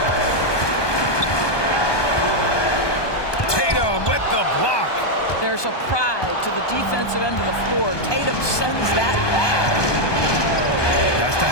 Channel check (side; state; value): right; late; 1.2 ms